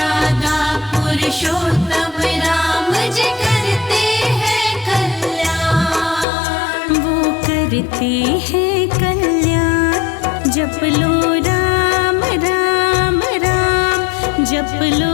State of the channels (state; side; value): drops out; right; at 6.2 s